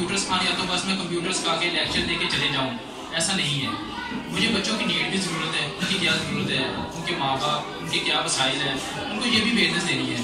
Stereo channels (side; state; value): both; identical; correlation 1.00